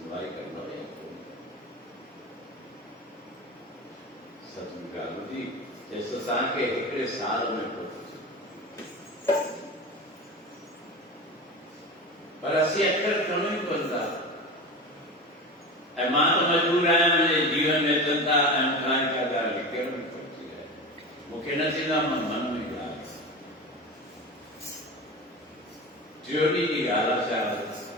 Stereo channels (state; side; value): normal; both; correlation 0.28